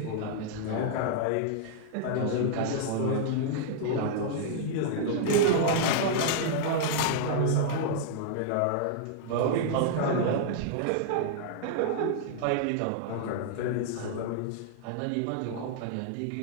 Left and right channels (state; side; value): different; both; correlation -0.01